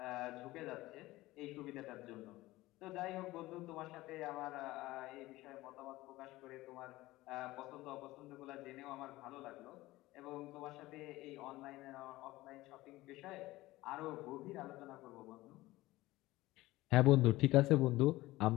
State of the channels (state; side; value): quieter; right; 18.2 dB